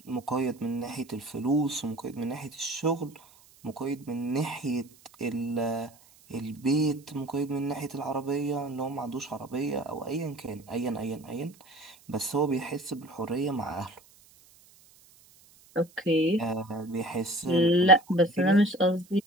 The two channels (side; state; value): right; noise; hiss, 27 dB below the sound